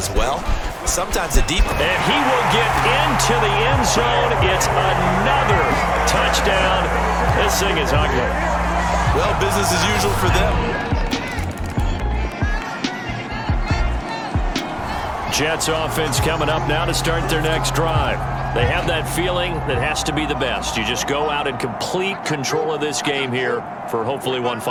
well. Sometimes the deep... And he will get into the end zone. It's another touchdown. This thing is ugly. Well, business as usual for them. Jets offense coming up now to start their next drive. They have that feeling that has to be the best. You just go out and complete control of this game here for hopefully one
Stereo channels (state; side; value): identical; both; correlation 1.00